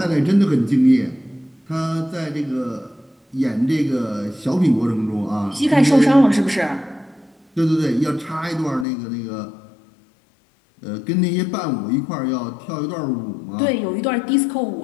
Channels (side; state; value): right; drops out; at 8.8 s